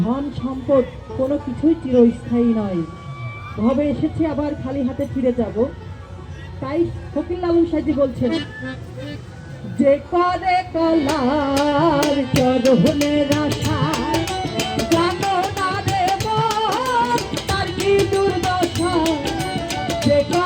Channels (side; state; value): both; identical; correlation 1.00